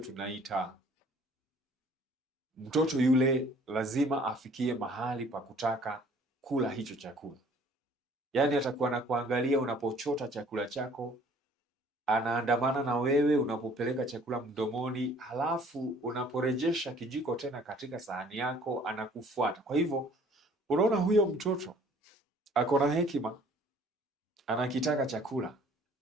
mtoto yule lazima afikie mahali pa kutaka kula hicho chakula. Yaani atakuwa na kuangalia unapochota chakula chako, anaandamana na wewe unapopeleka chakula mdomoni, halafu unaporejesha kijiko tena katika sahani yako anakufuata. Kwa hivyo unaona huyo mtoto ako na hekima, anakitaka chakula,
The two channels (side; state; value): both; normal; correlation 0.55